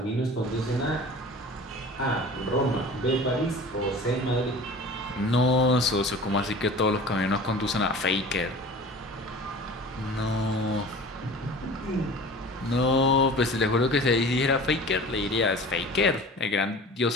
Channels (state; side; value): normal; both; correlation 0.40